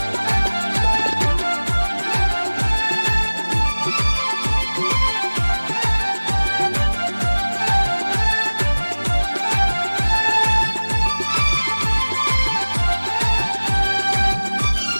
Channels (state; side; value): inverted; both; correlation -1.00